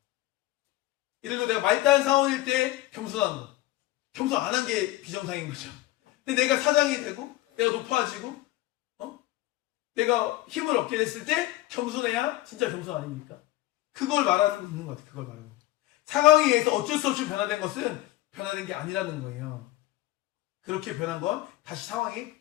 예를 들어 내가 말다한 상황일 때 겸손한 거, 겸손 안 한 게 비정상인 거죠. 근데 내가 사장이 되고 내가 높아지고 내가 힘을 얻게 됐을 때 겸손해야 진짜 겸손 아닙니까? 그걸 말하는 것 같아요. 그걸 말하는 거죠. 상황에 의해서 어쩔 수 없이 변화된 것은 변화된 게 아니라는 거예요. 그렇게 변한 건 다시 상황이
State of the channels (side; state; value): right; quieter; 16.6 dB